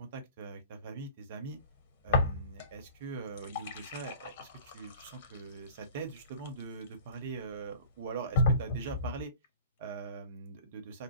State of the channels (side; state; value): both; inverted; correlation -0.43